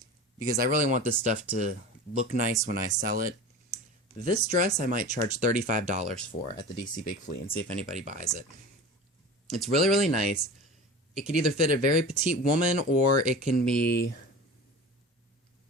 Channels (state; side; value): normal; both; correlation 0.34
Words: because I really want this stuff to look nice when I sell it. This dress I might charge $35 for at the DC Big Flea and see if anybody buys it. It's really, really nice. It could either fit a very petite woman, or it can be